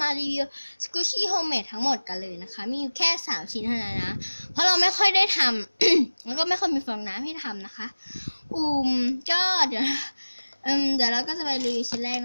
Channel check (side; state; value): both; inverted; correlation -1.00